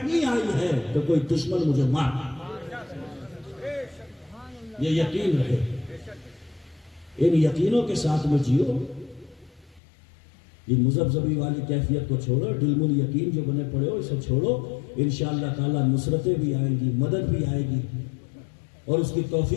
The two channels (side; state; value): right; drops out; at 9.8 s